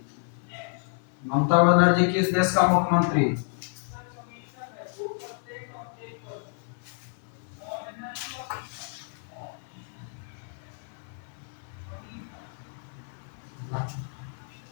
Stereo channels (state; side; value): silent; right; 58 dB below the other